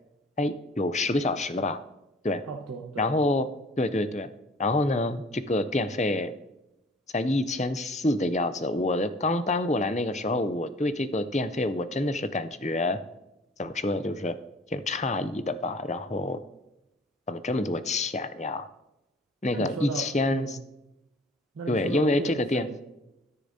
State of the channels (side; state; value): both; normal; correlation 0.50